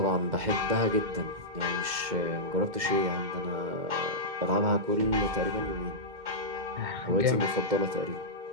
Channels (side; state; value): left; late; 2.1 ms